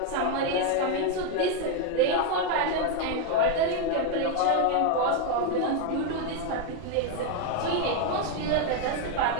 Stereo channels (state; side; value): different; both; correlation 0.01